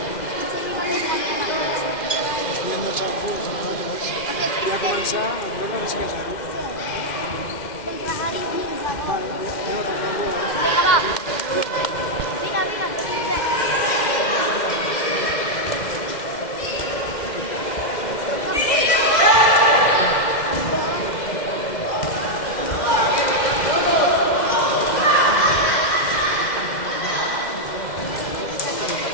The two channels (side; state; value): right; late; 2.1 ms